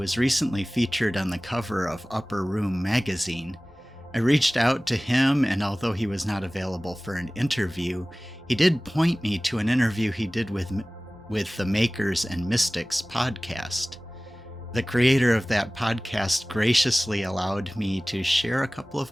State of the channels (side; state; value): both; normal; correlation 0.98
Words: recently featured on the cover of Upper Room magazine. I reached out to him, and although he was not available for an interview, he did point me to an interview he did with the Makers and Mystics podcast. The creator of that podcast graciously allowed me to share a couple